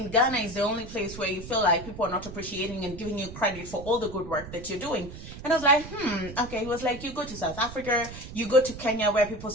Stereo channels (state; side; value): noise; right; rumble, 12 dB below the sound